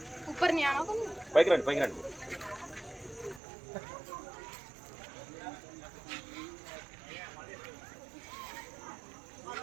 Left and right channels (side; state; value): left; drops out; at 3.4 s